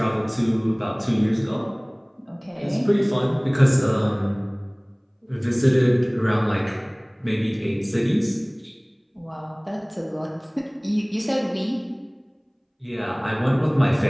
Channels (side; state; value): both; identical; correlation 1.00